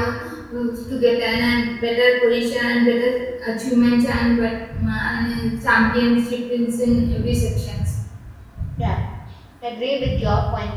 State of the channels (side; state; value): both; identical; correlation 1.00